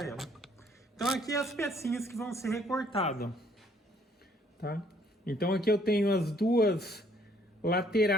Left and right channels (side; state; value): both; normal; correlation 0.63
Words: ela. Então aqui as pecinhas que vão ser recortadas, tá? Então aqui eu tenho as duas